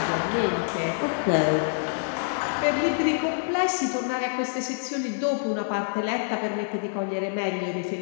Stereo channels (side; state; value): right; silent; 61 dB below the other